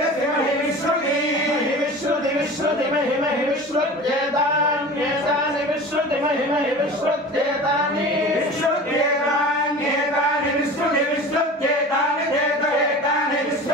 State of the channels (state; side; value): normal; both; correlation 0.36